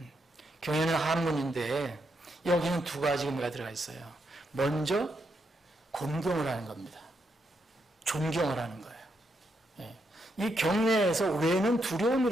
경외는 한문인데 여기는 두 가지 의미가 들어가 있어요. 먼저 공경을 하는 겁니다. 존경을 하는 거예요. 예. 이 경외에서 외는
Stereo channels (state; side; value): normal; both; correlation 0.80